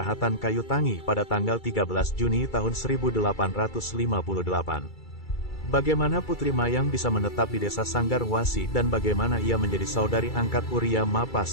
Kayu Tangi pada tanggal 13 Juni tahun 1858. Bagaimana Putri Mayang bisa menetap di desa Sanggarwasi dan bagaimana ia menjadi saudari angkat Uria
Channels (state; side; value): late; right; 2.3 ms